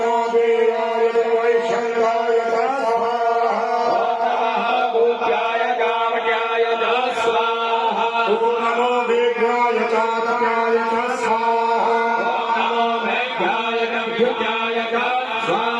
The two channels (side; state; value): both; identical; correlation 1.00